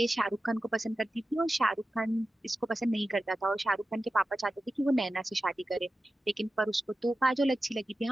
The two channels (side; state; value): both; normal; correlation 0.93